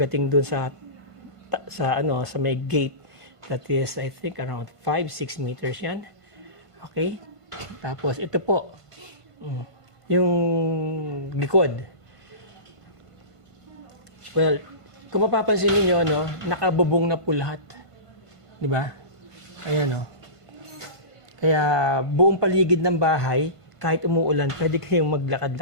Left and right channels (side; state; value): right; late; 1.5 ms